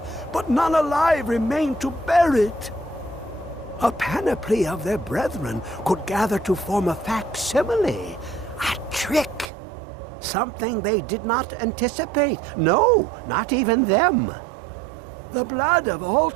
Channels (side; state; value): left; drops out; at 9.5 s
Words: but none alive remain to bear it. A panoply of their brethren could gather to form a facsimile, a trick. Something they did not anticipate. No, not even them. The blood of